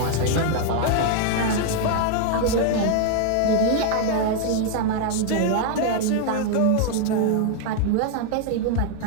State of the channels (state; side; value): different; both; correlation 0.00